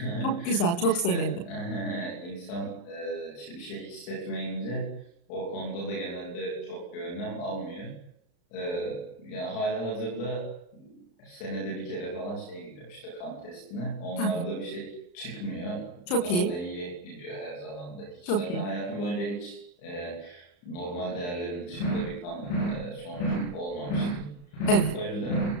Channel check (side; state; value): right; late; 34 ms